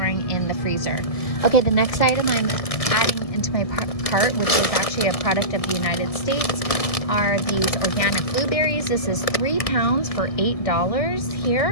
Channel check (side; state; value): right; late; 1.7 ms